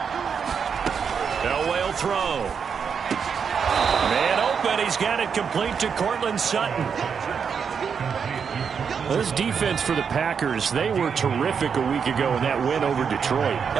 Elway will throw. Man open, he's got it complete to Cortland Sutton. This defense for the Packers, they were terrific a week ago in that win over Detroit.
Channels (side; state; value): left; quieter; 6.6 dB